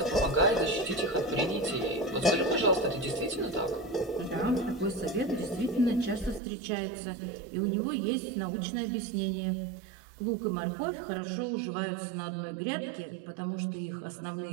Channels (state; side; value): drops out; left; at 6.4 s